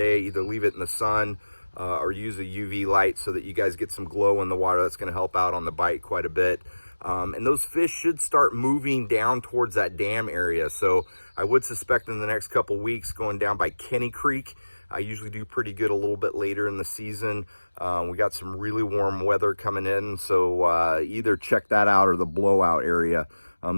Either leave it in the sun or use a UV light so that you guys get some glow in the water. That's going to help out on the bite quite a bit. And those fish should start moving down towards that dam area. So I would suspect in the next couple weeks going down by Kenny Creek. I usually do pretty good a little bit later in the season. We got some really warm weather coming in, so either check that out or the blowout area.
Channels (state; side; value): inverted; both; correlation -1.00